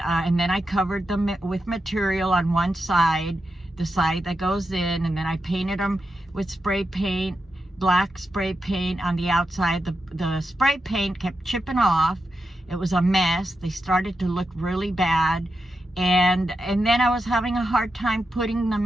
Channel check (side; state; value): both; normal; correlation 0.88